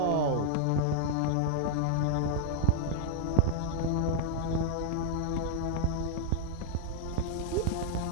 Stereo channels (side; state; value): both; different; correlation 0.00